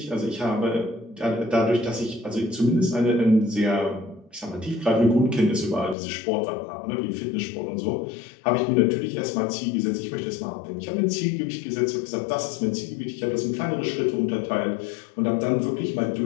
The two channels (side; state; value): right; drops out; at 6.0 s